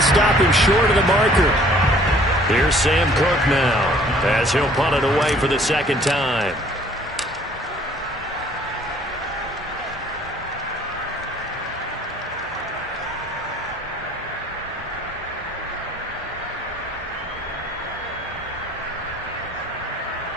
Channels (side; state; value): both; normal; correlation 0.56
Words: stop him short of the marker. Here's Sam Cook now, as he'll punt it away for the 2nd time.